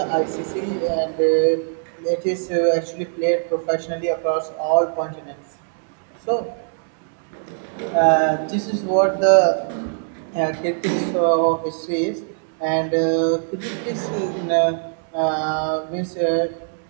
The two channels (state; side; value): silent; left; 63 dB below the other